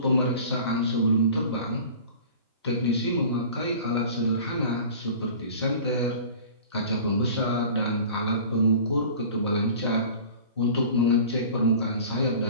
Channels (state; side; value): inverted; both; correlation -0.41